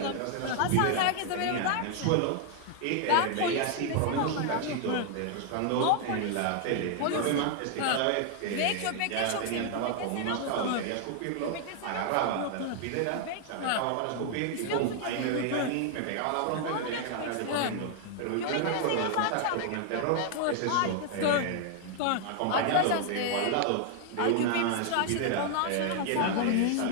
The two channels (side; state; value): both; different; correlation 0.00